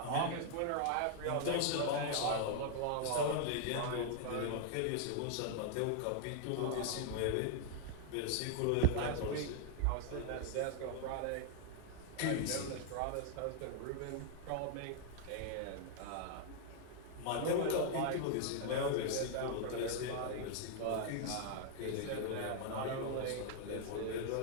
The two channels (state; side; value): different; both; correlation -0.01